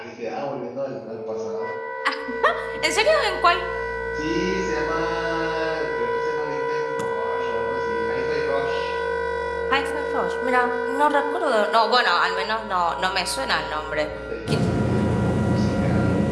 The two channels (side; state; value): both; identical; correlation 1.00